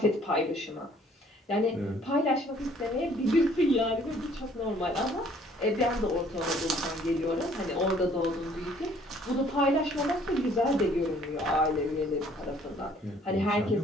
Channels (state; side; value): normal; both; correlation 0.59